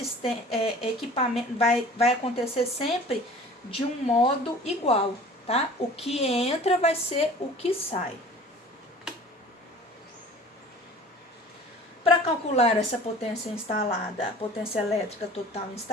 equipamento, vai acontecer sempre de um modo igual, tá? O que entra vai ser o que sai. Para calcular essa potência instalada, a potência elétrica total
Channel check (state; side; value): normal; both; correlation 0.45